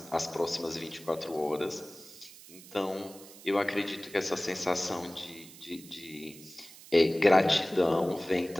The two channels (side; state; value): right; noise; hiss, 19 dB below the sound